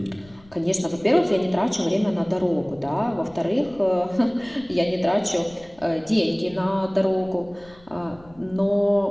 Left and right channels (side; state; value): left; noise; rumble, 25 dB below the sound